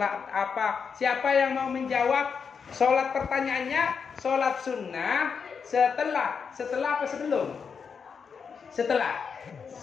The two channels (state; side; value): quieter; right; 6.1 dB